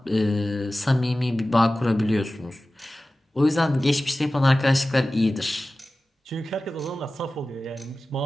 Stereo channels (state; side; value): normal; both; correlation 0.96